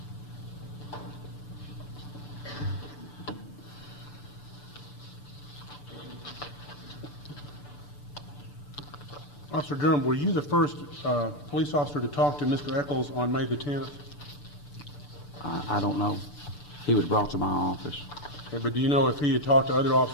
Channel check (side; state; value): right; late; 6.8 ms